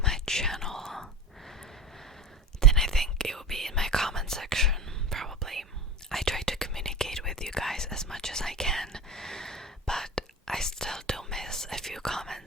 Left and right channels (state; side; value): normal; both; correlation 0.29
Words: my channel, then I think it will be in my comment section, probably. I try to communicate with you guys as much as I can, but I still do miss a few